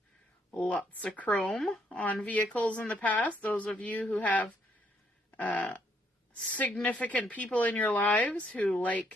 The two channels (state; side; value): normal; both; correlation 0.71